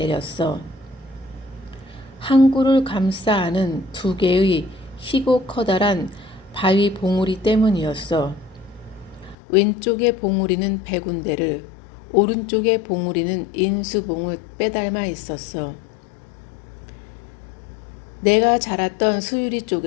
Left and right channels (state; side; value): drops out; right; at 9.3 s